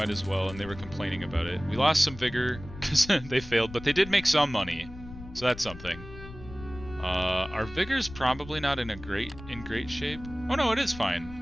as well. And they were complaining about it. We lost some vigor because they failed, but they did make some money, so that's something. Our vigor's probably not in great shape. Oh no, it is fine.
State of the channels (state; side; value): noise; left; rumble, 15 dB below the sound